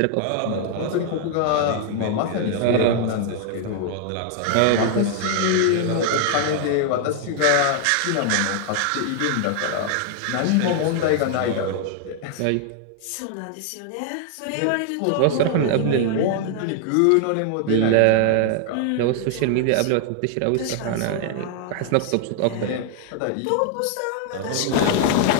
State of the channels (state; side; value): different; both; correlation 0.00